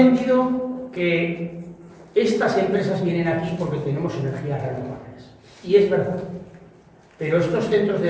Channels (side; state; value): both; identical; correlation 1.00